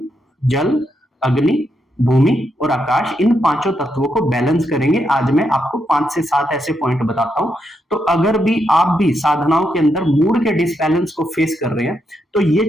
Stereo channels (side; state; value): both; normal; correlation 0.81